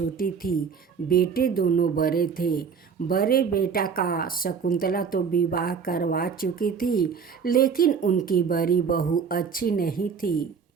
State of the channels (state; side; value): quieter; left; 6.3 dB